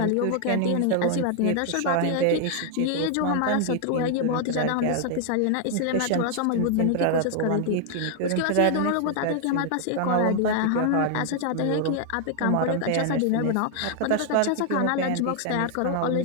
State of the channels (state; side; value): different; both; correlation 0.00